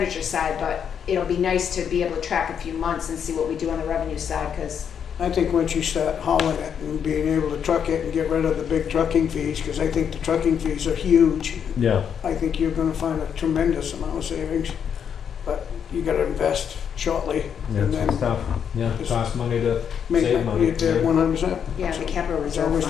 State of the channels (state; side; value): quieter; right; 7.9 dB